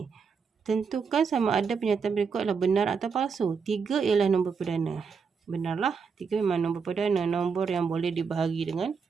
Tentukan sama ada pernyataan berikut adalah benar atau palsu. 3 ialah nombor perdana. Benarlah, 3 memang nombor perdana. Nombor yang boleh dibahagi dengan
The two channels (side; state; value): left; quieter; 5.7 dB